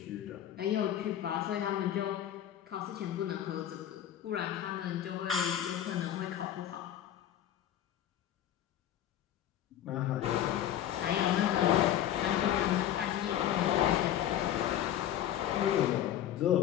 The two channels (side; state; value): right; quieter; 11.2 dB